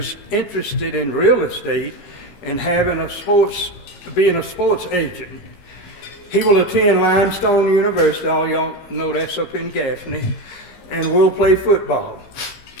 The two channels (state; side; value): late; right; 15 ms